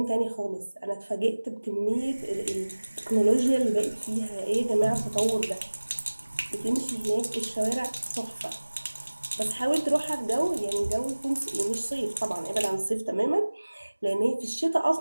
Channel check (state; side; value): inverted; both; correlation -1.00